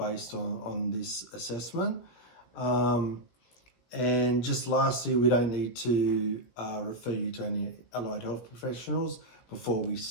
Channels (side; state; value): right; late; 17 ms